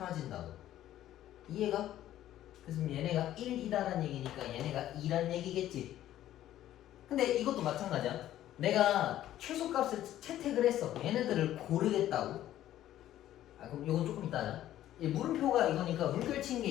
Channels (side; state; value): right; quieter; 12.9 dB